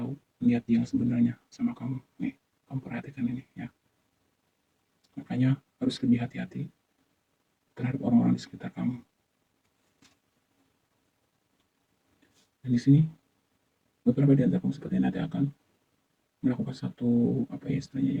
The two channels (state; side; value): identical; both; correlation 1.00